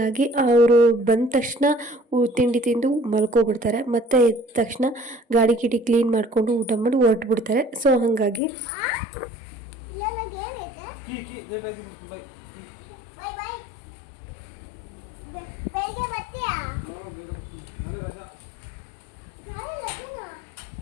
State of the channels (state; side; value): drops out; right; at 8.4 s